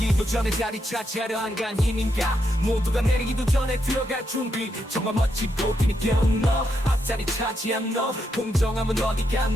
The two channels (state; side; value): normal; both; correlation 0.81